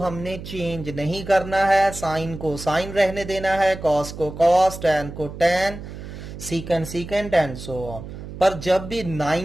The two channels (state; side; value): noise; right; hum, 11 dB below the sound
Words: चेंज नहीं करना है, साइन को साइन रहने देना है, कॉस को कॉस, टैन को टैन, सीकेंड सीकेंड एंड सो ऑन। पर जब भी